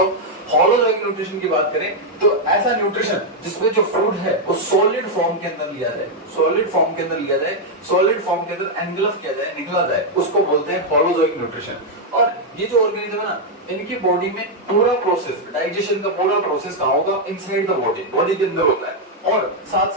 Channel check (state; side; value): normal; both; correlation 0.00